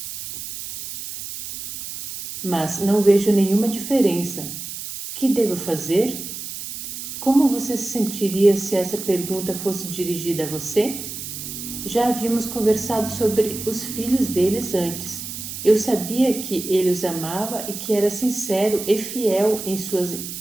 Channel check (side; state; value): right; noise; hiss, 8 dB below the sound